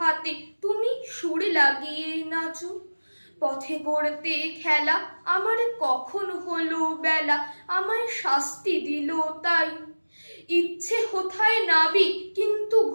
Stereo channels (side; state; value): both; inverted; correlation -1.00